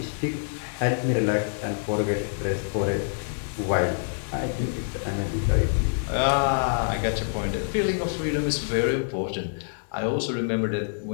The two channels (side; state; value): right; silent; digital silence